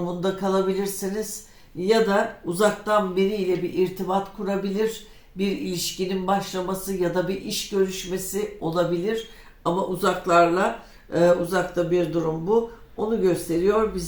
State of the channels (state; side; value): identical; both; correlation 1.00